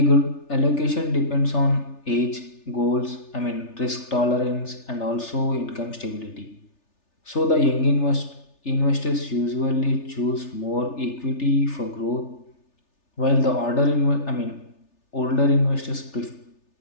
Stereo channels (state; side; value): late; right; 3.4 ms